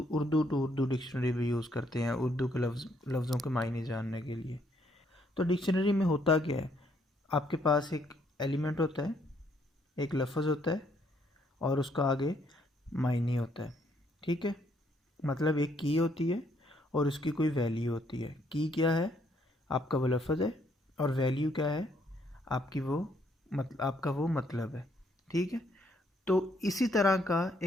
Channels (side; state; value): both; normal; correlation 0.70